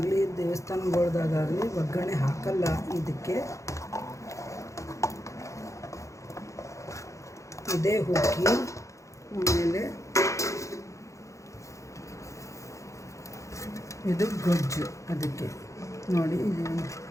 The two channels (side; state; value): right; late; 0.15 ms